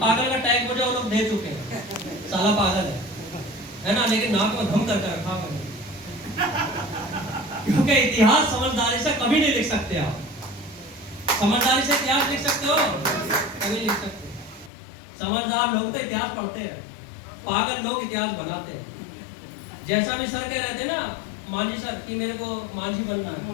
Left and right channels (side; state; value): right; drops out; at 14.7 s